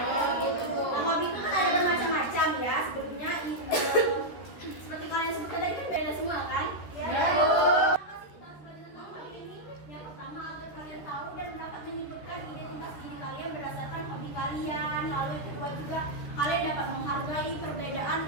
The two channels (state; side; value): late; right; 14 ms